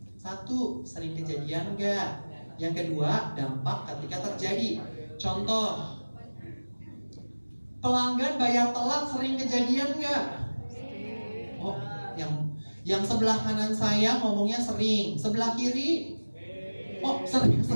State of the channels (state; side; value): inverted; both; correlation -1.00